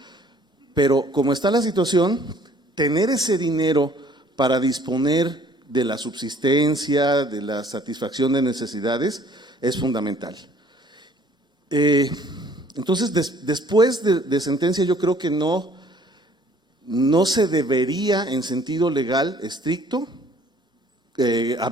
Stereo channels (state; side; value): normal; both; correlation 0.57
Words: Pero como está la situación, tener ese dinero para disponer de la subsistencia, de la satisfacción de necesidades, es fundamental. Entonces, después de sentencia, yo creo que no se debería, en sentido legal estricto,